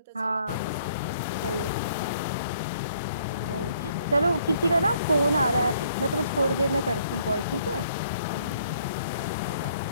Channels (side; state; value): both; inverted; correlation -0.64